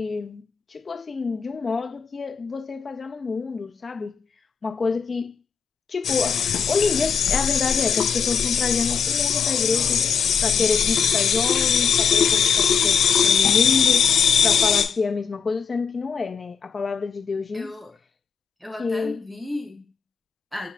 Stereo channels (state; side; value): quieter; right; 6.5 dB